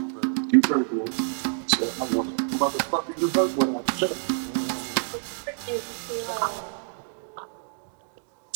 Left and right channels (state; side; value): silent; left; digital silence